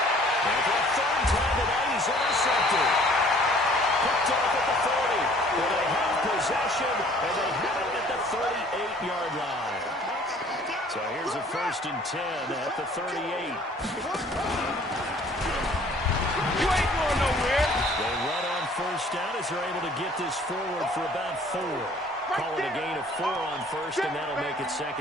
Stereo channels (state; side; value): normal; both; correlation 0.55